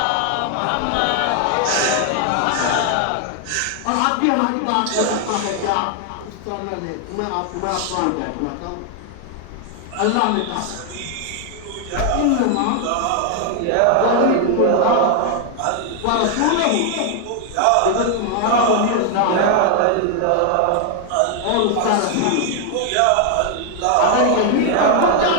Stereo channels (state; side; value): different; both; correlation 0.00